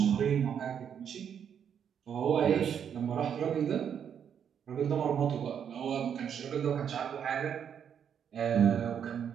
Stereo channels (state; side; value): quieter; left; 8.2 dB